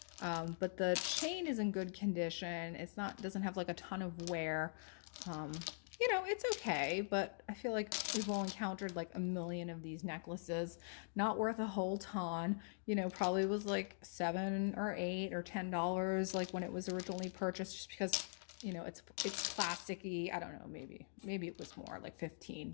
But the chain is in good condition. It's not, doesn't have like a ton of wear. You know, it's okay, but I feel like we've all encountered like a million of these necklaces. Not worth a whole ton. You know, probably was like $7 or $8 or $10 like when it was originally purchased, just because, you know, it's plasticky. I don't know, maybe it was more like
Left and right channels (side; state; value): right; silent; digital silence